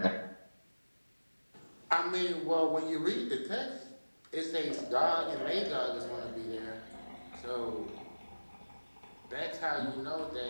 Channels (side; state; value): both; inverted; correlation -1.00